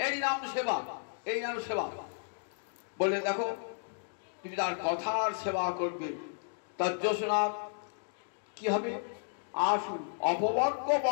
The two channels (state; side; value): silent; right; digital silence